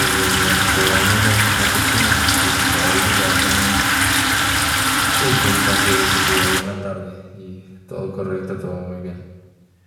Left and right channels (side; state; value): both; identical; correlation 1.00